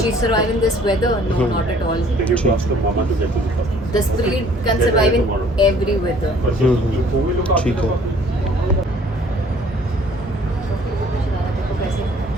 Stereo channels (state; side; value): normal; both; correlation 0.57